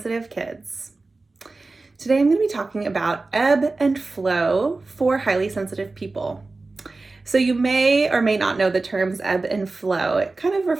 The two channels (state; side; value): quieter; left; 3.5 dB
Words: kids. Today I'm going to be talking about ebb and flow for highly sensitive people. So you may or may not know the terms ebb and flow. It kind of